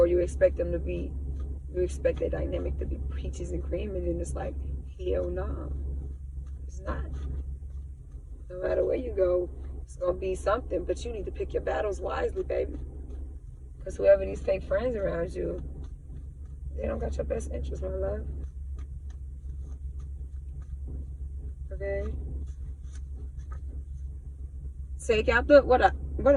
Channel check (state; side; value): identical; both; correlation 1.00